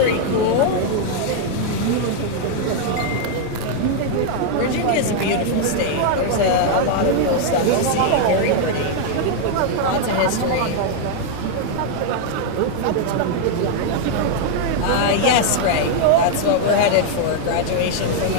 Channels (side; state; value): both; different; correlation 0.00